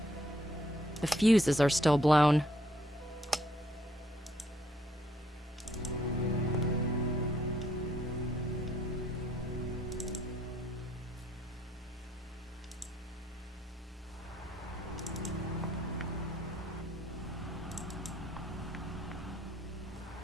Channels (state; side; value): normal; both; correlation 0.69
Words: The fuses are still blown.